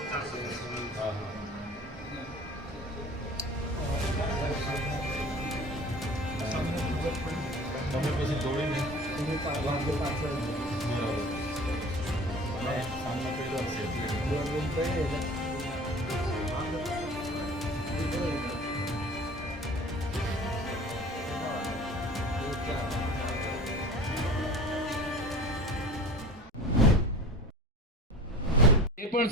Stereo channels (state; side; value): normal; both; correlation 0.40